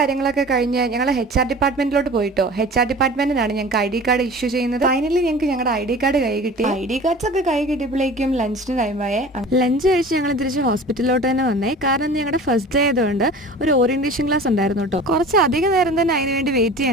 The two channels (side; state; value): both; normal; correlation 0.40